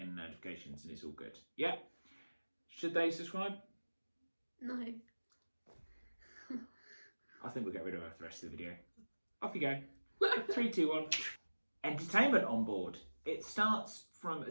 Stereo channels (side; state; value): both; inverted; correlation -1.00